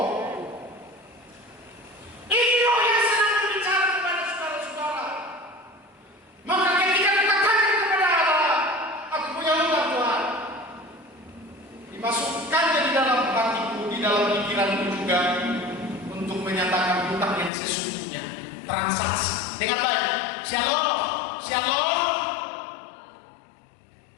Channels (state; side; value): drops out; right; at 17.5 s